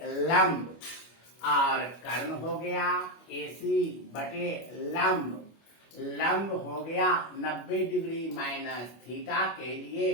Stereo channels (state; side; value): late; right; 25 ms